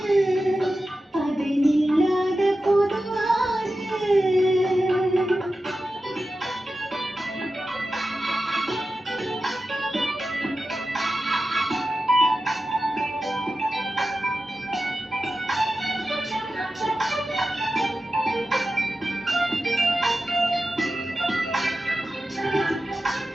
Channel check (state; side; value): normal; both; correlation 0.92